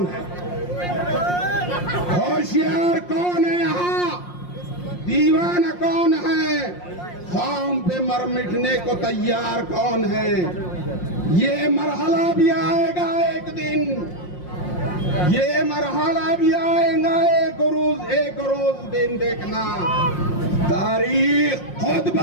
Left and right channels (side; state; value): right; late; 5.6 ms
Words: है? होशियार कौन है यहाँ, दीवाना कौन है? ख़ौम पे मर मिटने को तैयार कौन है? ये मरहला भी आएगा एक दिन, ये मरहला भी आएगा एक रोज दिन देखना, तारीख खुद